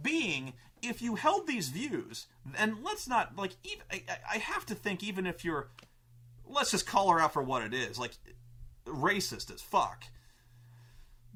being, if you held these views, and let's not like, even I have to think, even if you're, let's just call her out for what it is, like racist as fuck.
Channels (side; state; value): both; identical; correlation 1.00